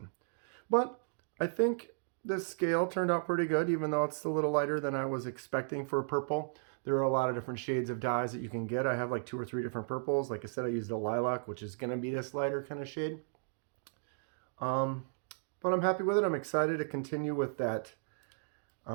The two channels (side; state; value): left; silent; digital silence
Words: But I think the scale turned out pretty good, even though it's a little lighter than I was expecting for purple. There are a lot of different shades of dyes that you can get. I have like 2 or 3 different purples. Like I said, I used a lilac, which is going to be this lighter kind of shade. But I'm happy with it. I'm excited to continue with that